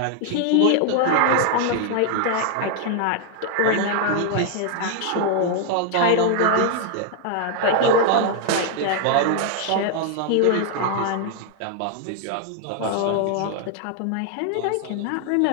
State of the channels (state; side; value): different; both; correlation 0.00